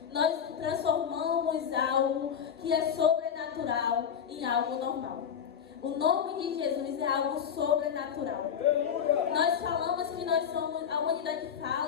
Nós transformamos algo que é sobrenatural em algo normal. O nome de Jesus é algo sobrenatural. Nós falamos que nós somos, a humanidade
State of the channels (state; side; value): quieter; right; 8.0 dB